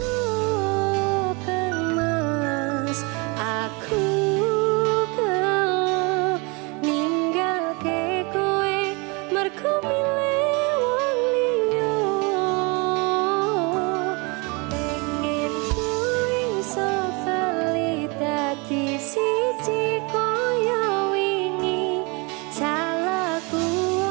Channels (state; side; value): quieter; left; 29.3 dB